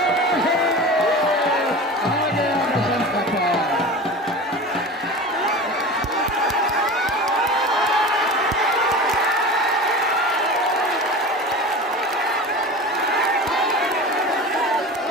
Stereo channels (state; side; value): normal; both; correlation 0.32